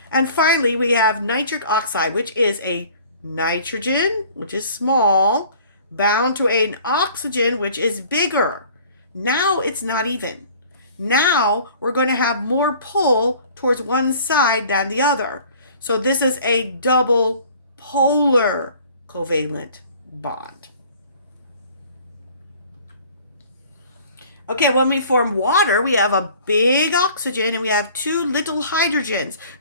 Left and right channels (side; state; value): both; inverted; correlation -0.50